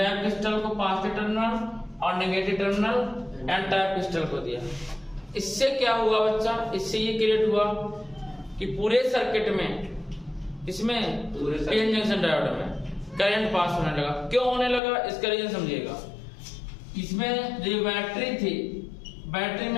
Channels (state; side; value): drops out; right; at 14.8 s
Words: क्रिस्टल को पॉजिटिव टर्मिनल और negative terminal N type crystal को दिया। इससे क्या हुआ बच्चा? इससे ये क्रिएट हुआ कि पूरे सर्किट में, इसमें पीएन जंक्शन डायोड में करंट पास होने लगा। क्यों होने लगा इसका रीजन समझिएगा। इसमें जो बैटरी थी, बैटरी